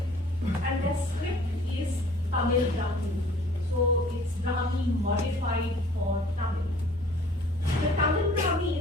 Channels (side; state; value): both; normal; correlation 0.52